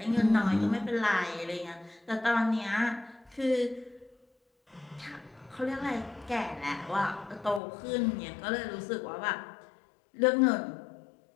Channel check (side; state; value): right; drops out; at 7.6 s